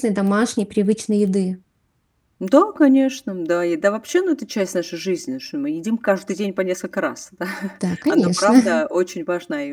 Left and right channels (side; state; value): both; identical; correlation 1.00